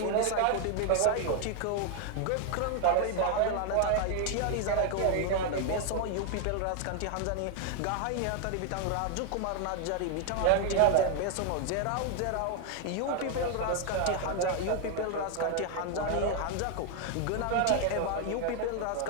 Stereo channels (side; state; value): both; different; correlation 0.01